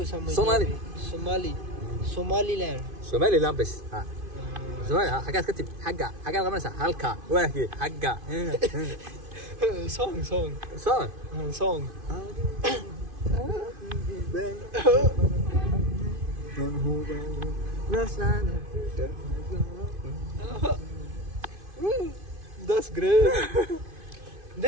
समझ Somali. Somaliland. سومالي لا بس ها. سومالي حاجات كتب حاجة غمسة هلكا واهي حاجة. song صار. That's great.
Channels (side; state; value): left; late; 2.5 ms